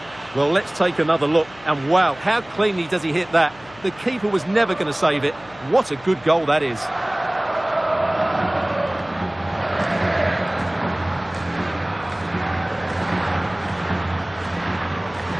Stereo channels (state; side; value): noise; left; hum, 23 dB below the sound